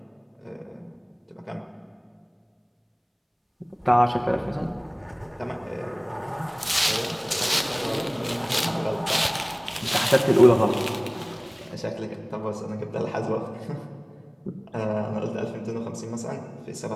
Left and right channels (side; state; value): both; identical; correlation 1.00